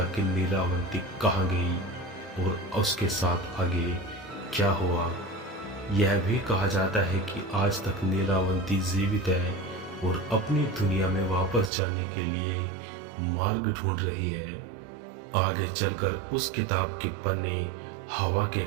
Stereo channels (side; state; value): left; drops out; at 11.7 s